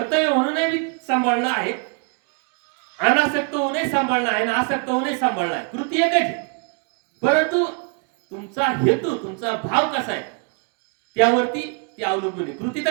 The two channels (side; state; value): left; quieter; 36.6 dB